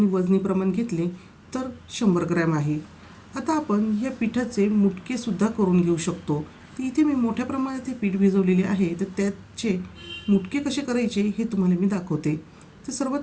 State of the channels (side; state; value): both; identical; correlation 1.00